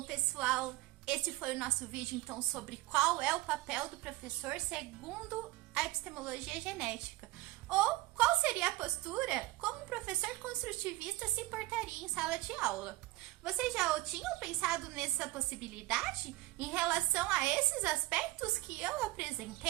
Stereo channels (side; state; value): left; quieter; 18.5 dB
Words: pessoal, esse foi o nosso vídeo, então, sobre qual é o papel do professor segundo a epistemologia genética. Ou qual seria a postura como um professor construtivista se portaria em sala de aula. Vocês já tinham pensado nessa possibilidade em relação a esses aspectos que eu